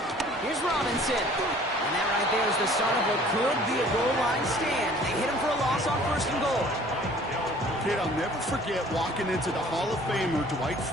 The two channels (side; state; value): both; normal; correlation 0.52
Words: Here's Robinson. And that right there is the start of what could be a goal line stand. They hit him for a loss on 1st and goal. Kid, I'll never forget walking into the Hall of Famer Dwight